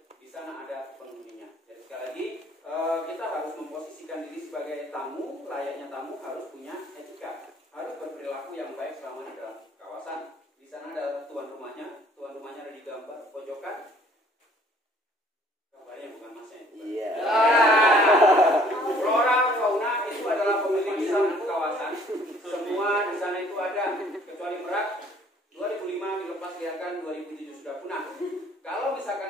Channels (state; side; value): normal; both; correlation 0.57